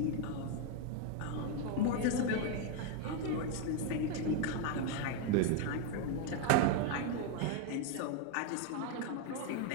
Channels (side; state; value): both; different; correlation 0.01